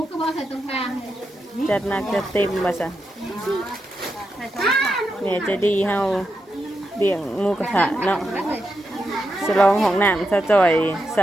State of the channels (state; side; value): normal; both; correlation 0.86